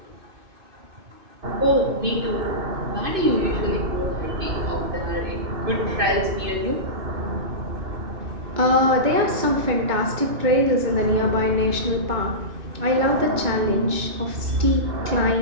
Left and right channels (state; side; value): late; left; 2.6 ms